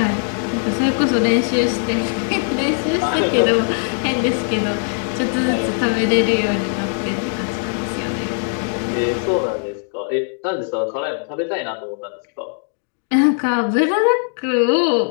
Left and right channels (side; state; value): right; silent; 59 dB below the other